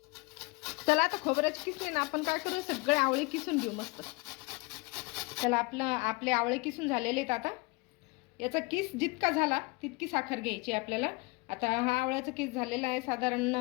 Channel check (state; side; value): quieter; right; 27.2 dB